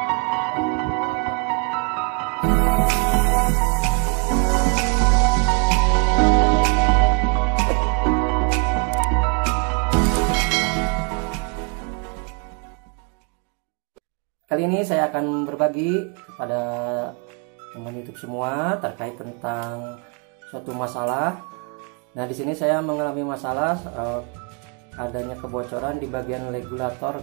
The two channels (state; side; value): quieter; left; 34.8 dB